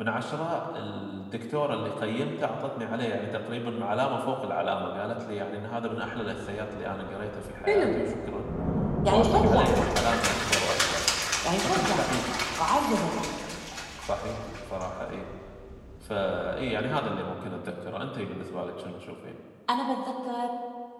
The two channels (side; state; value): both; identical; correlation 1.00